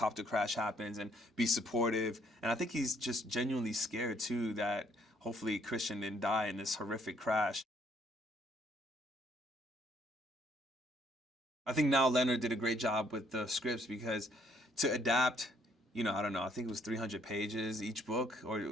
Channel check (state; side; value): normal; both; correlation 0.66